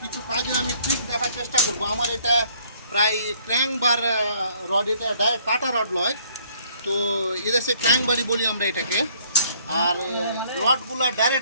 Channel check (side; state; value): both; inverted; correlation -0.62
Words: কাজে আমি ট্রিক দেখার চেষ্টা করব। আমার এটা প্রায় ক্র্যাঙ্ক বার রড, এটা ডাইরেক্ট কাটা রড নয়, তো এদেশে ক্র্যাঙ্ক বারি বলি আমরা এটাকে। আর রডগুলো